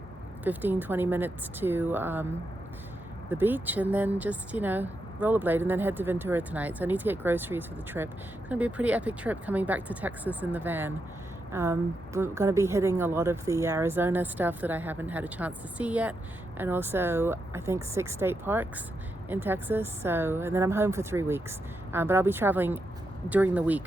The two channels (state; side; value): normal; both; correlation 0.84